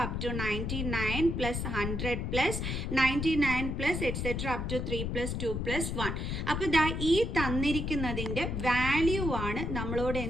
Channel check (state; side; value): noise; left; rumble, 2 dB below the sound